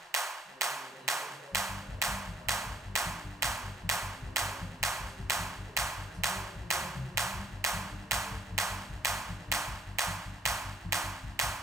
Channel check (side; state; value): both; normal; correlation 0.64